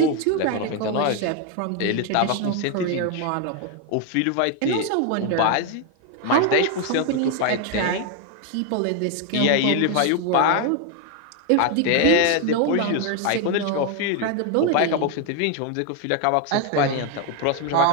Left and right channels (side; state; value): both; different; correlation 0.01